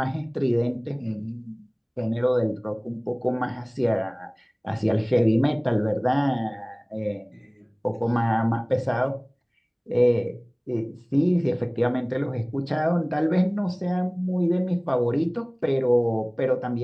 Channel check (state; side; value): identical; both; correlation 1.00